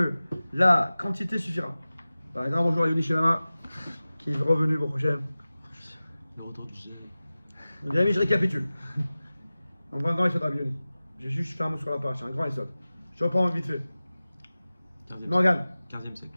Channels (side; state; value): both; inverted; correlation -0.97